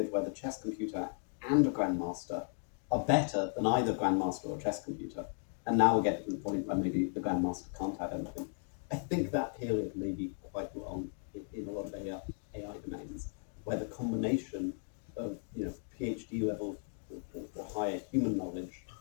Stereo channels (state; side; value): silent; right; 54 dB below the other